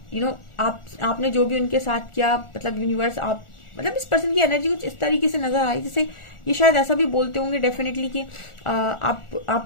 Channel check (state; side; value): late; right; 1.4 ms